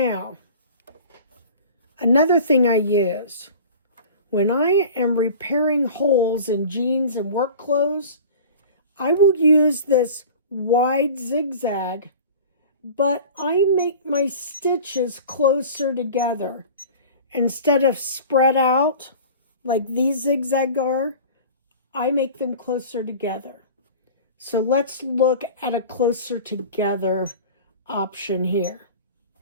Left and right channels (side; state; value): both; inverted; correlation -0.40